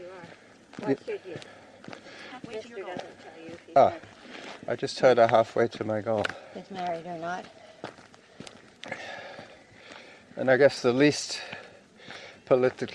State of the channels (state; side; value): identical; both; correlation 1.00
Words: are. What should you? Halfway to Mister your goal. doesn't tell you if he's Ah. I just heard her halfway to my goal. married or not. And I guess the least